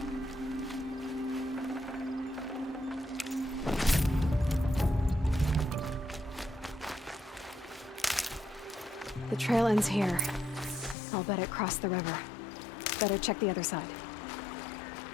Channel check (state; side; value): drops out; right; at 11.0 s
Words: The trail ends here. I'll bet it crossed the river. Better check the other side.